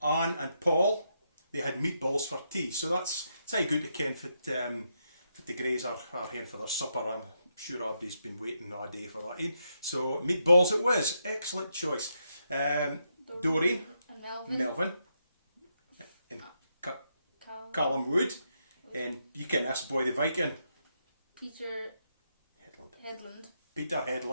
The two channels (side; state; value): both; inverted; correlation -0.80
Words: Anne and Paul. They had meatballs for tea. So it's how good to ken for the Greys are here for their supper. I'm sure everybody's been waiting all day for that. So meatballs it was. Excellent choice. Doreen. And Melvin. And Callum Wood. And you can ask Boy the Viking. Peter Headland. Peter